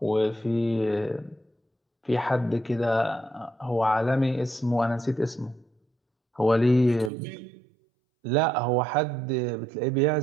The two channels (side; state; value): left; drops out; at 7.1 s